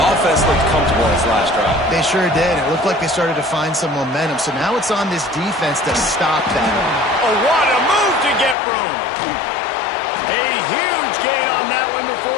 looked comfortable in its last drive. They sure did. It looked like they started to find some momentum. So now it's on this defense to stop that. Oh, what a move to get room. A huge gain on that one before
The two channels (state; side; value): drops out; right; at 8.6 s